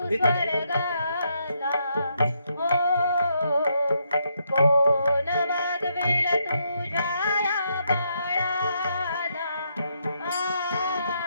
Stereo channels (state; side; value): inverted; both; correlation -0.77